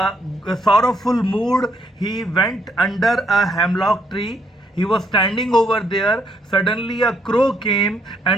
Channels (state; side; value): normal; both; correlation 0.72